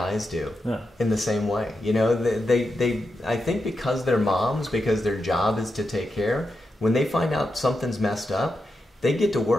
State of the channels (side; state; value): both; normal; correlation 0.87